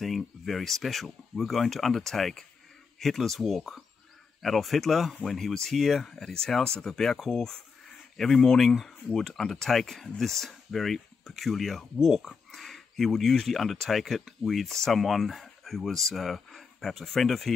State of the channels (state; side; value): quieter; right; 5.3 dB